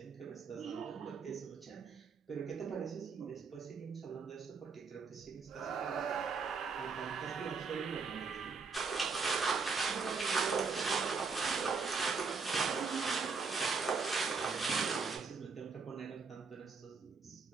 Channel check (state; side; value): quieter; left; 5.0 dB